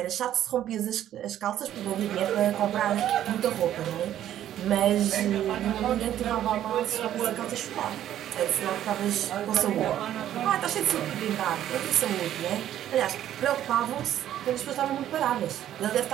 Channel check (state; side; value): quieter; left; 11.6 dB